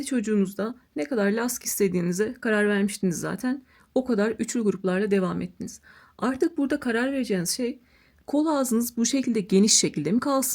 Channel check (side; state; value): both; identical; correlation 1.00